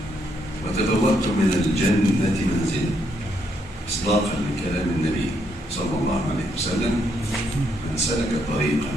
wa tabawwa'tum min al-jannati manzila. Isdaqan li kalam an-nabi صلى الله عليه وسلم من سلك طريقا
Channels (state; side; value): normal; both; correlation 0.75